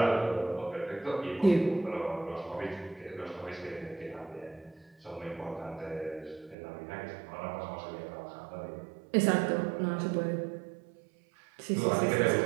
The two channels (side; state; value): left; drops out; at 6.6 s